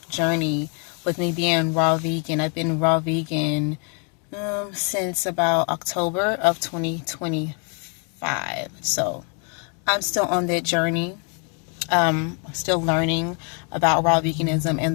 journey with me being raw vegan. I've been raw vegan since about October of 2025. So I'm still on that journey. Still learning about raw veganism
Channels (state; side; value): quieter; right; 39.4 dB